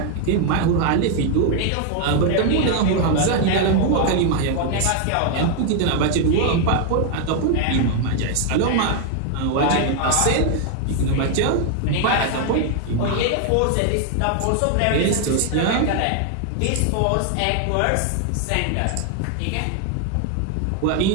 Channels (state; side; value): different; both; correlation 0.00